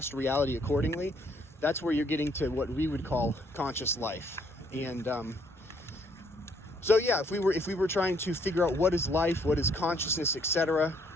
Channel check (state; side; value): normal; both; correlation 0.67